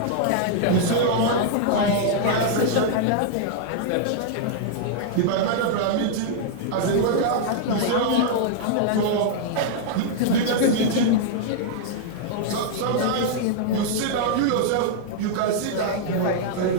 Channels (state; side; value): different; both; correlation -0.01